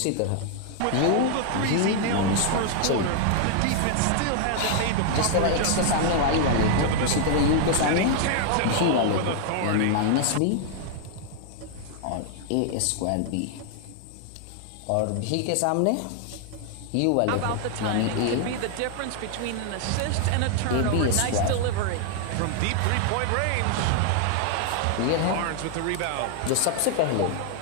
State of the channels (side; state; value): both; different; correlation 0.00